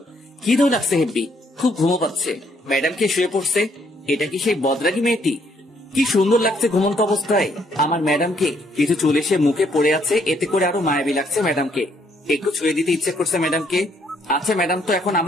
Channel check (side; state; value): both; normal; correlation 0.69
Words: কি ধরে লাগছে হেব্বি, খুব ঘুমো পাচ্ছে। ম্যাডামকে শুয়ে পড়ছে, এটা কি সেই বদরাগী মেয়েটি? কি সুন্দর লাগছে ঘুমন্ত অবস্থায় আমার ম্যাডামকে। কিছু চুল এসে মুখে পড়ে আছে, এতে করে আরো মায়াবী লাগছে ম্যাডামকে। একটু ছুঁয়ে দিতে ইচ্ছে করছে ম্যাডামকে। আচ্ছা ম্যাডাম তো এখন